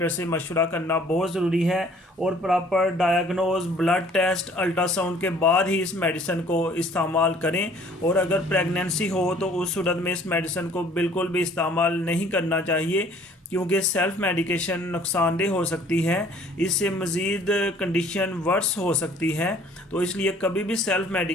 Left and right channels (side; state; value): both; normal; correlation 0.55